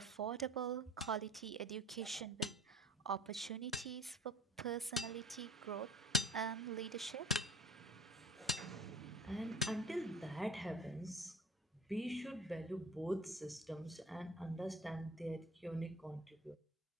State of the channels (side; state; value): both; normal; correlation 0.42